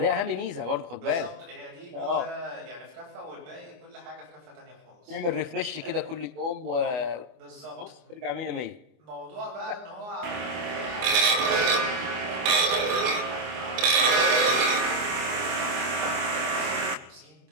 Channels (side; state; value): left; late; 24 ms